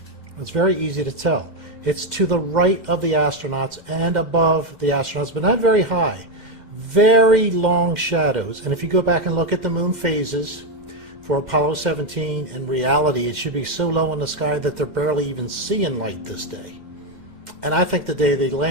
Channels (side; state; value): right; late; 9.0 ms